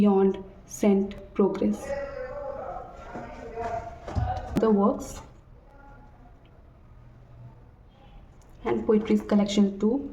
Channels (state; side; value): identical; both; correlation 1.00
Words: Saint, progress. The works and poetries collection 2।